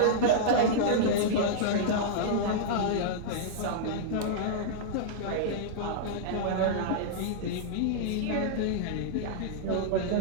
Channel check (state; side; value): different; both; correlation -0.02